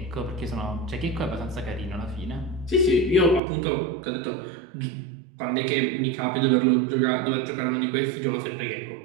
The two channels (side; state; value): left; drops out; at 3.4 s